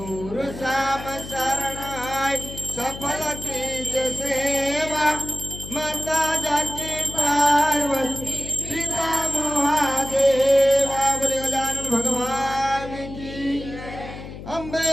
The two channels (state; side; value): noise; left; hum, 12 dB below the sound